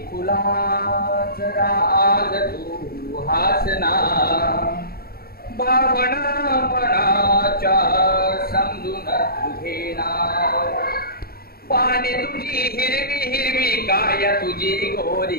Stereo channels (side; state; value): right; late; 0.44 ms